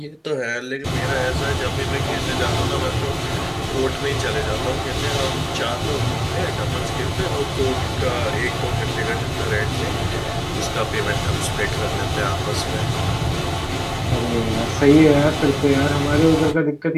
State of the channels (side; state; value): both; identical; correlation 1.00